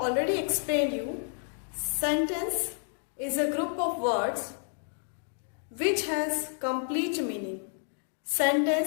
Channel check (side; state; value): right; silent; 57 dB below the other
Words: explained you, sentence is a group of words which has complete meaning.